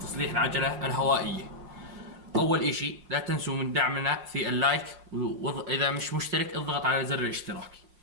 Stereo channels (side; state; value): left; late; 5.6 ms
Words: العجلة الهوائية. أول إشي لا تنسوا من دعمنا في اللايك، وإذا مش مشترك اضغط على زر الاشتراك.